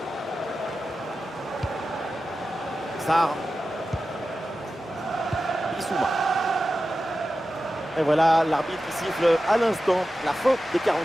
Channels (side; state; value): both; normal; correlation 0.93